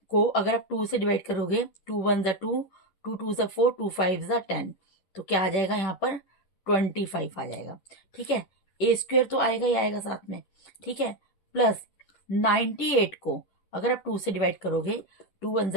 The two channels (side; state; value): right; late; 10 ms